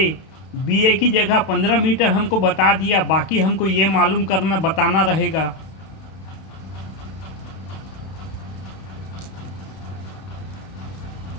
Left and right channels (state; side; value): late; right; 32 ms